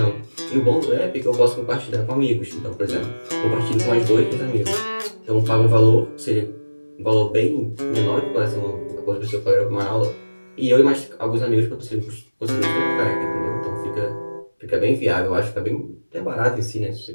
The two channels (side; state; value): both; inverted; correlation -1.00